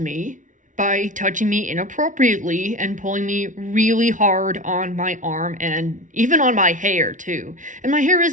by touching me inappropriately and pulling me really hard on my arm and even on my hair, too. And my hair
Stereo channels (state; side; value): late; left; 0.37 ms